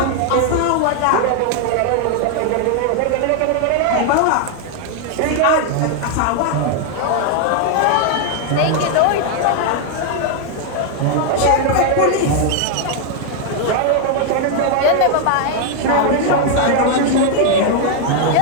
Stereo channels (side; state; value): both; different; correlation 0.00